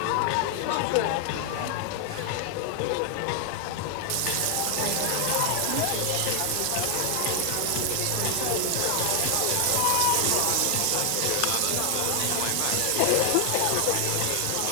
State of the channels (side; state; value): both; different; correlation 0.00